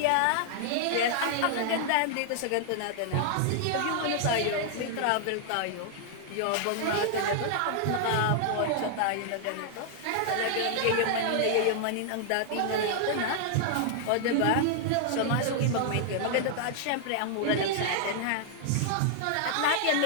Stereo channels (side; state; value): both; different; correlation -0.01